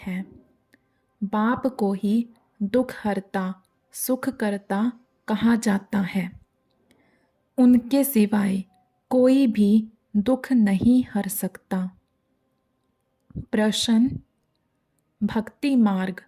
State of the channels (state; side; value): identical; both; correlation 1.00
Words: बाप को ही दुख हरता सुख करता कहा जाता है। उनके सिवाय कोई भी दुख नहीं हर सकता। प्रश्न: भक्ति मार्ग